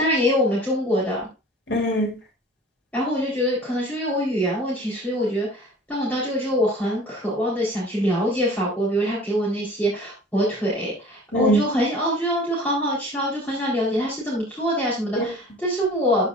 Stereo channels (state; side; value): normal; both; correlation 0.45